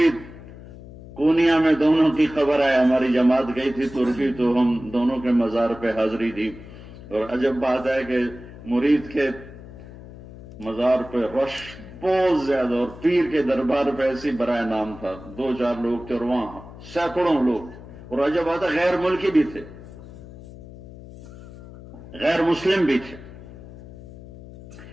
کونیا میں دونوں کی خبر ہے. ہماری جماعت گئی تھی ترکی، تو ہم دونوں کے مزار پہ حاضری دی. اور عجب بات ہے کہ مرید کے مزار پہ رش بہت زیادہ، اور پیر کے دربار پہ ایسی برائے نام تھا. 2-4 لوگ تھے اور وہاں سینکڑوں لوگ. اور عجب بات ہے، غیر ملکی بھی تھے، غیر مسلم بھی تھے.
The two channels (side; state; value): left; noise; hum, 16 dB below the sound